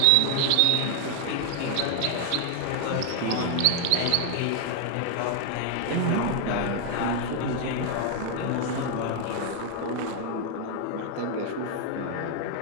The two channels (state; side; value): different; both; correlation 0.00